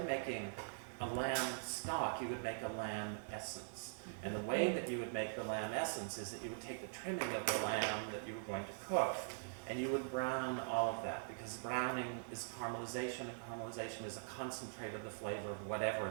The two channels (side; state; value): left; silent; digital silence